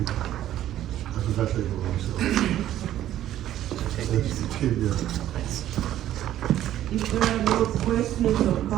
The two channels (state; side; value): quieter; left; 12.5 dB